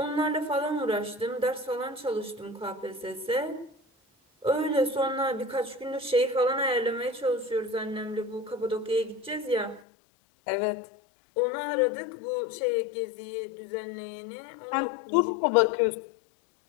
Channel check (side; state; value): right; drops out; at 9.8 s